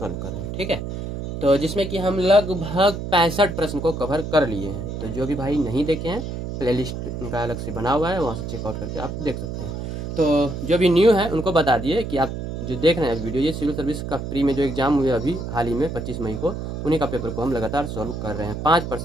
कर रहे हैं। ठीक है, तो जिसमें कि हम लगभग 65 प्रश्न को कवर कर लिए हैं। तो जो भी भाई नहीं देखे हैं प्लेलिस्ट उनका अलग से बना हुआ है, वहाँ से चेकआउट करके आप देख सकते हैं। तो जो भी न्यू है उनको बता दिए कि आप जो देख रहे हैं वीडियो, ये सिविल सर्विस का प्री में जो एग्जाम हुए अभी हाल ही में 25 मई को, उन्हीं का पेपर को हम लगातार सॉल्व कर रहे हैं 5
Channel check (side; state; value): right; noise; hum, 6 dB below the sound